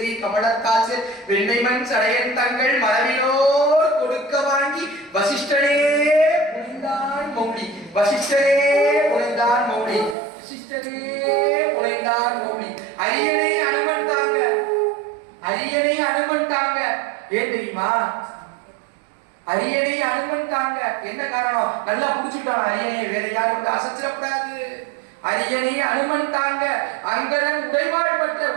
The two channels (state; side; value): drops out; left; at 10.2 s